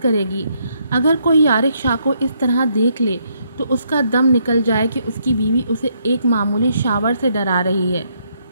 کرے گی۔ اگر کوئی یارق شاہ کو اس طرح دیکھ لے تو اس کا دم نکل جائے کہ اس کی بیوی اسے ایک معمولی شاور سے ڈرا رہی ہے۔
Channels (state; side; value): inverted; both; correlation -0.73